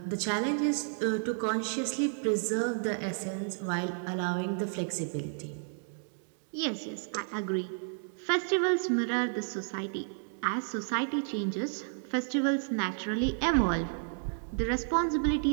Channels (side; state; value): left; silent; digital silence